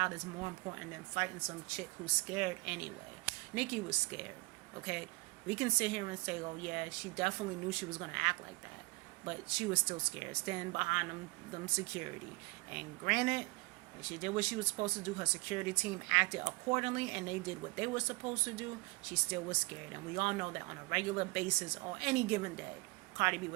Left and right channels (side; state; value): left; quieter; 26.4 dB